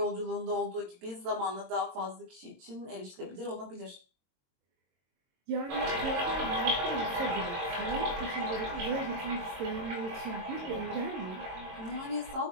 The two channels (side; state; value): left; late; 22 ms